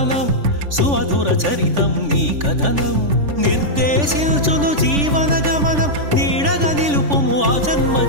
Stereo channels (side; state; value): left; late; 3.5 ms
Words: సుమధుర చరితం నీ కథనం నిర్దేశించును జీవన గమనం నీడగా నిలుపుము ఆ జన్మ